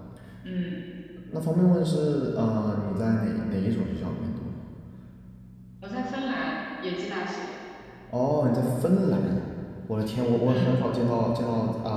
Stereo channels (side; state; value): both; identical; correlation 1.00